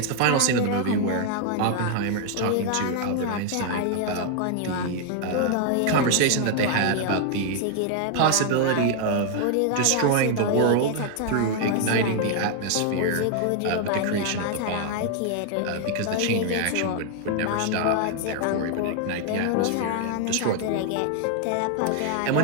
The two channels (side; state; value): both; different; correlation 0.00